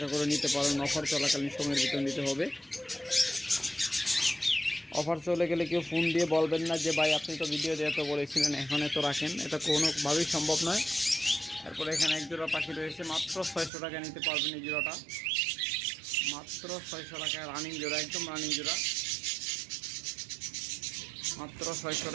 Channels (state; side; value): drops out; left; at 13.7 s